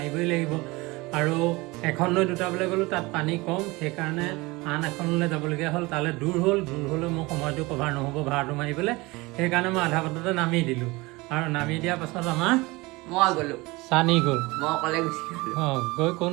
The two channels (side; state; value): left; quieter; 22.9 dB